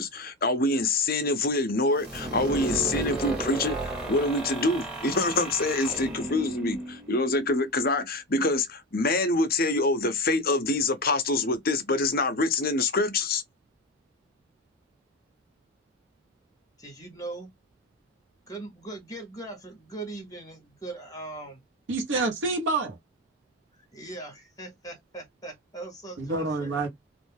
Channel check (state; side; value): normal; both; correlation 0.22